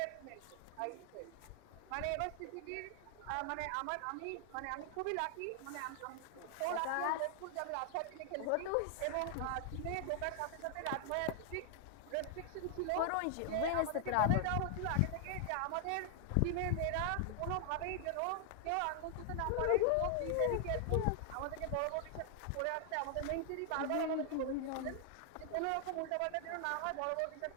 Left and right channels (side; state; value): both; different; correlation 0.00